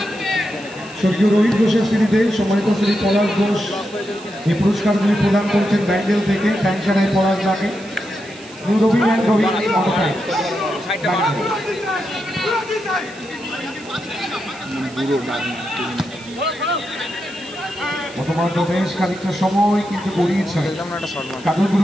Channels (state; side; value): noise; right; hiss, 20 dB below the sound